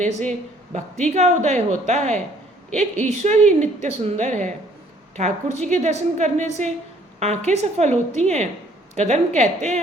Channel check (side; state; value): both; normal; correlation 0.60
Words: से भक्ति का उदय होता है। एक ईश्वर ही नित्य सुंदर है। ठाकुर जी के दर्शन करने से आंखें सफल होती हैं। कदम्ब कहते